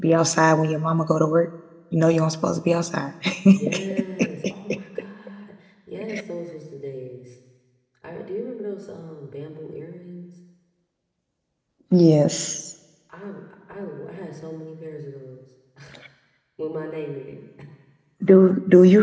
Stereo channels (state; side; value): identical; both; correlation 1.00